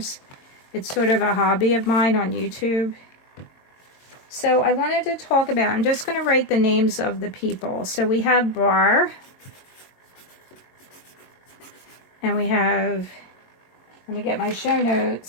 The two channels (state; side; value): late; right; 22 ms